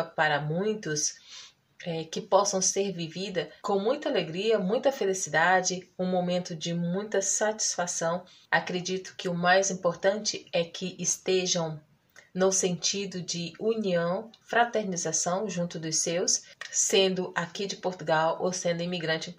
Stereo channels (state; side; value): identical; both; correlation 1.00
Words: para muitos, que possam ser vivida com muita alegria, muita felicidade, um momento de muita satisfação. Acredito que o mais importante é que estejam no sentido de união, fraternização junto dos seus, sendo aqui de Portugal ou sendo imigrante em